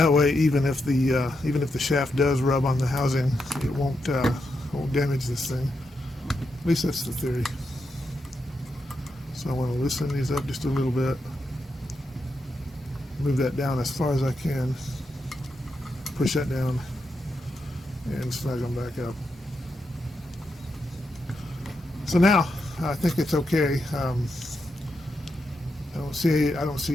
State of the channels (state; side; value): normal; both; correlation 0.84